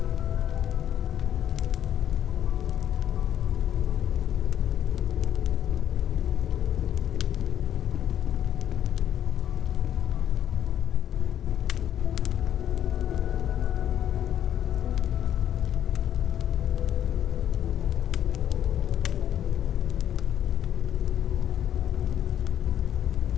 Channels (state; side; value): quieter; right; 10.4 dB